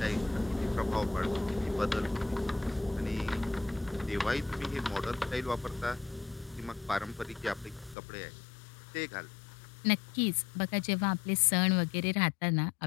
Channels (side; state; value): right; drops out; at 8.0 s